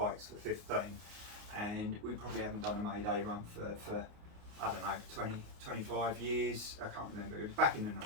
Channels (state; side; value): late; left; 29 ms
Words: for 15, and we probably haven't done a Mayday run for I don't know, 20, 25 years. I can't remember, it was back in the